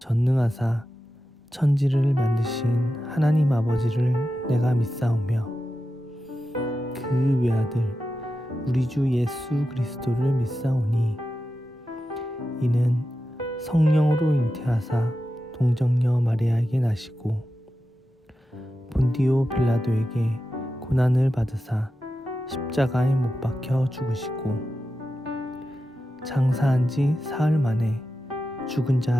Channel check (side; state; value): both; normal; correlation 0.91